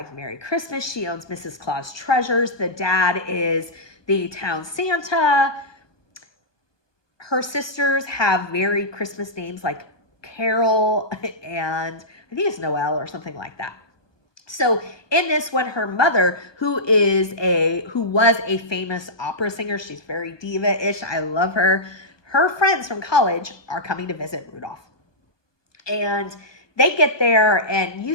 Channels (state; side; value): late; right; 1.2 ms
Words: Merry Christmas. She owns Mrs. Claus Treasures. The dad is the town Santa. Her sisters have very Christmas names like Carol and I think it's Noel or something like that. So in this one, her mother, who was a famous opera singer, she's very diva-ish, I love her. Her friends from college are coming to visit Rudolph. And they get there and you